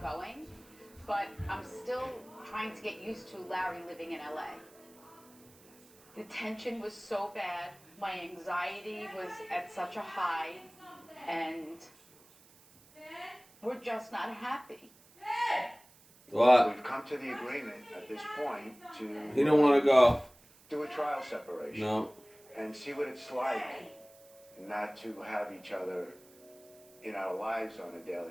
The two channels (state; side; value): noise; right; hiss, 26 dB below the sound